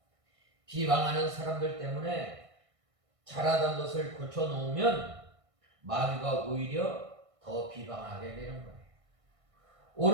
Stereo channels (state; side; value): late; left; 1.6 ms